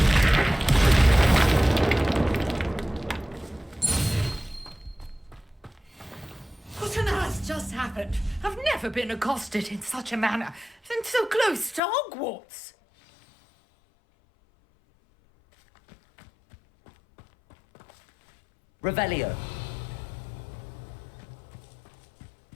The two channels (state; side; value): drops out; right; at 11.8 s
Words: What on earth just happened? I've never been accosted in such a manner, and so close to Hogwarts. Revelio.